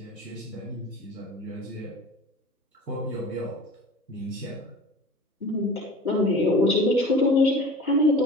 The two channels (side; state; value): both; normal; correlation 0.39